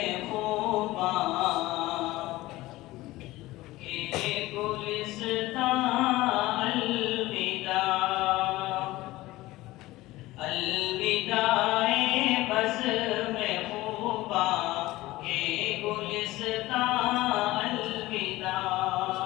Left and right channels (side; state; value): right; quieter; 18.2 dB